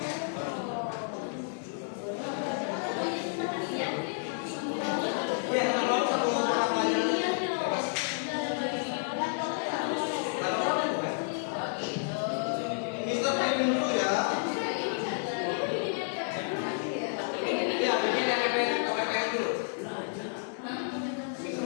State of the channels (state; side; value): silent; right; digital silence